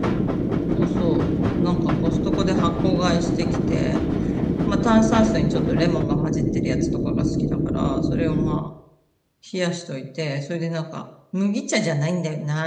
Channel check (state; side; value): identical; both; correlation 1.00